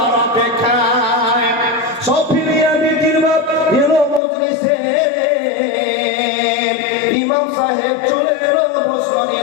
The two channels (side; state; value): right; drops out; at 4.2 s